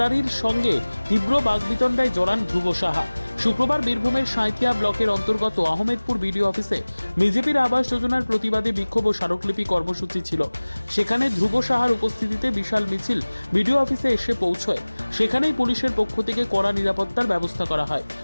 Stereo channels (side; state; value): both; inverted; correlation -1.00